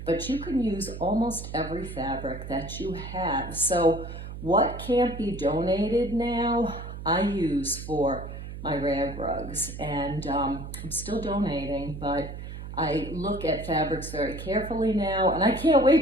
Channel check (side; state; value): right; noise; hum, 9 dB below the sound